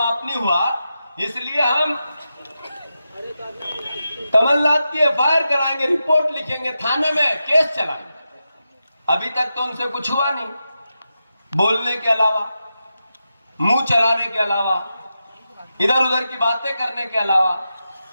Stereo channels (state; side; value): inverted; both; correlation -0.89